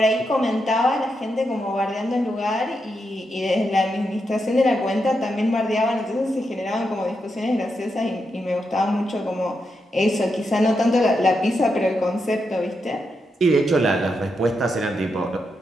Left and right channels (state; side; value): normal; both; correlation 0.84